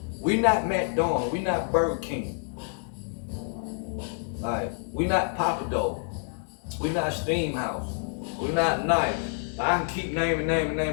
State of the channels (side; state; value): right; silent; 58 dB below the other